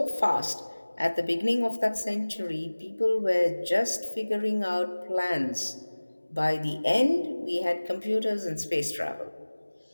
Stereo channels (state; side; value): inverted; both; correlation -1.00